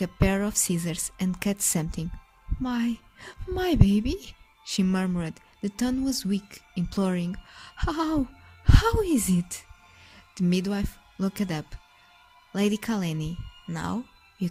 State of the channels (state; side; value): identical; both; correlation 1.00